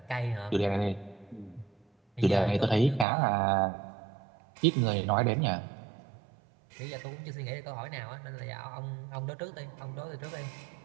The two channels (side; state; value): left; drops out; at 3.1 s